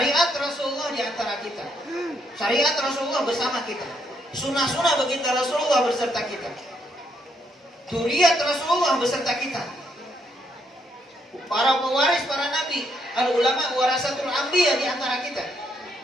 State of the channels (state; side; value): normal; both; correlation 0.74